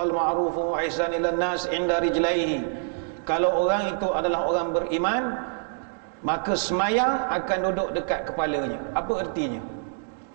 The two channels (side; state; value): left; silent; digital silence